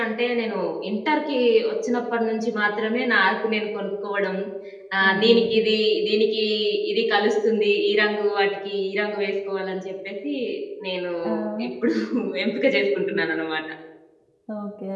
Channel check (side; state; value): both; identical; correlation 1.00